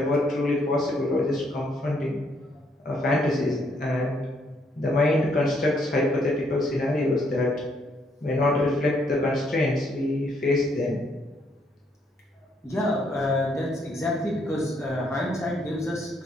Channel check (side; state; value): both; normal; correlation 0.71